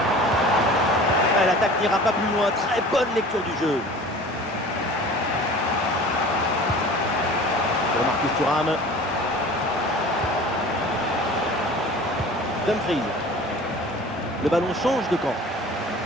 Ah, l'attaque n'ira pas plus loin. Très bonne lecture du jeu. Pour Marcus Thuram. Dumfries. Le ballon change de camp.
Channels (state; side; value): normal; both; correlation 0.42